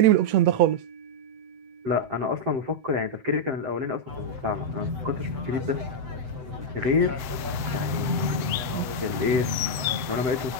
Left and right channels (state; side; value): late; left; 7.5 ms